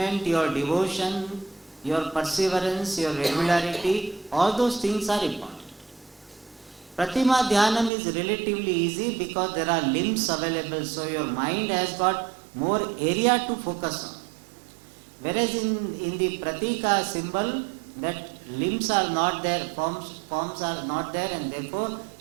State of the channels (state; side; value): drops out; left; at 7.9 s